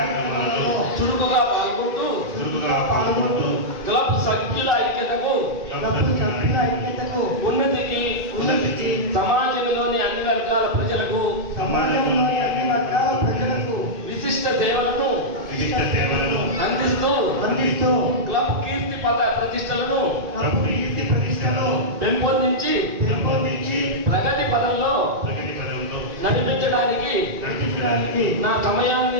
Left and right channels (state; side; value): late; left; 2.7 ms